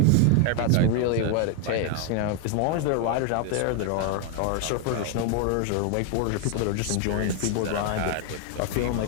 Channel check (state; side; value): different; both; correlation 0.00